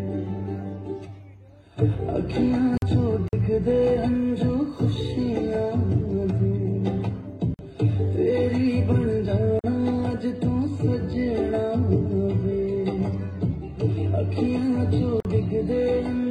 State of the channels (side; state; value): both; identical; correlation 1.00